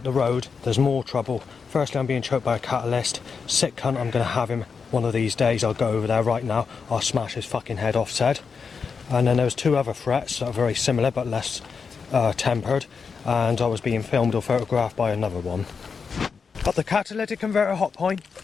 the road, there's more trouble. Firstly, I'm being choked by a catalyst. Sick cunt, I'm going to have him one of these days. I'll go over there right now. I'll smash his fucking head off, said. And then there was 2 other threats that are very similar but less tempered. And I was being filmed or photographed by another one. At the catalytic converter hot point,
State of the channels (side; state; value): right; quieter; 5.6 dB